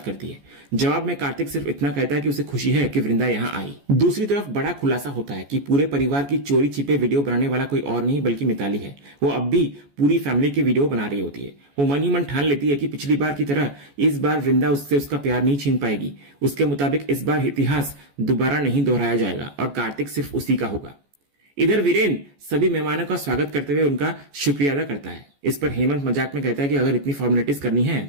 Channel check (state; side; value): late; left; 14 ms